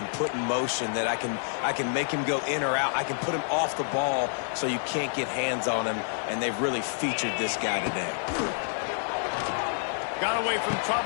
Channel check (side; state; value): right; silent; 59 dB below the other